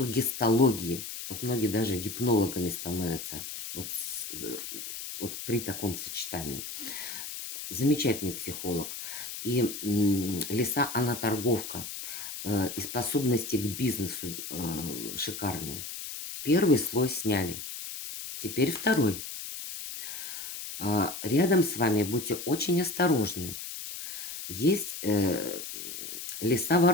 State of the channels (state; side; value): noise; left; hiss, 8 dB below the sound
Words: Вот многие даже гипнологами становятся вот при таком сочетании. Замечательный психолог. И лиса, она торговка. и способности к бизнесу шикарные. Первый слой сняли. Теперь второй. Рядом с вами будьте очень осторожны. Есть